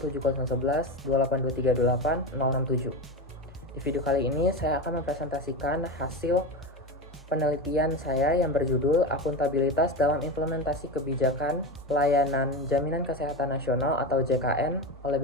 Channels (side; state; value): both; normal; correlation 0.20